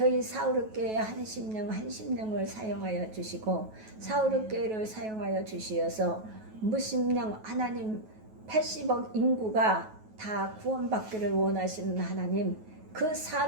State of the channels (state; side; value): late; left; 9.3 ms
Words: 사우르교회 한 심령을 사용하여 주시고 사우르교회를 사용하여 주시어서 무심령 하나님 80억 인구가 다 구원받기를 원하시는 하나님, 그